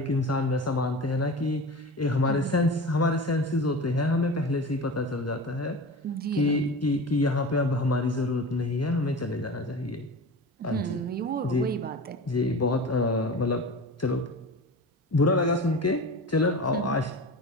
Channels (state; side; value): normal; both; correlation 0.32